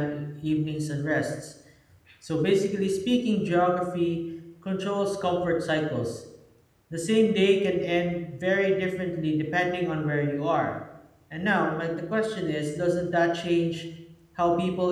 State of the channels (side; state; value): both; identical; correlation 1.00